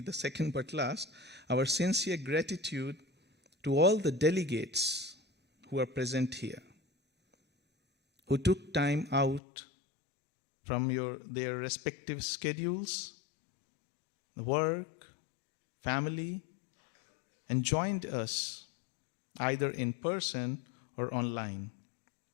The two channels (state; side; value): drops out; right; at 9.4 s